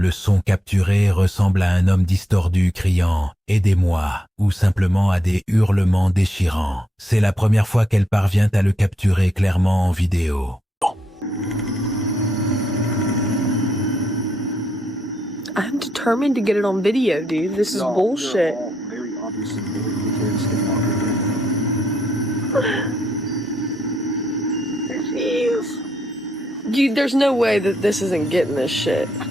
son capturé ressemble à un homme distordu criant « Aidez-moi » ou simplement à des hurlements déchirants. C'est la première fois qu'elle parvient à le capturer clairement en vidéo. I'm determined to get it on video, dude. This is bullshit. Very obviously very skinwalker. Jeez. Dude, there's no way that this isn't getting this shit.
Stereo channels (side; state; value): both; normal; correlation 0.79